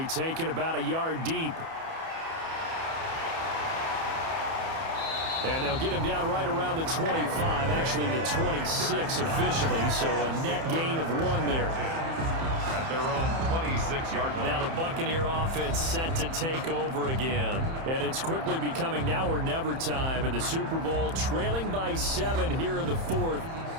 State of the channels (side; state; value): left; late; 30 ms